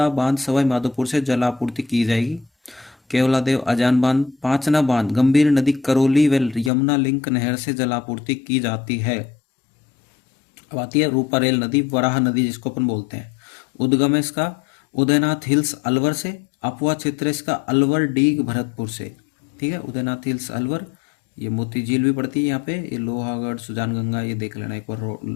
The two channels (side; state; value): right; drops out; at 6.7 s